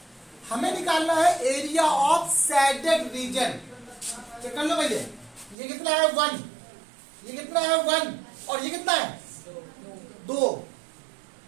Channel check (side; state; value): left; drops out; at 5.6 s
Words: हमें निकालना है area of shaded region. Check कर लो भैया, ये कितना है 1, ये कितना है 1, और ये कितना है 2,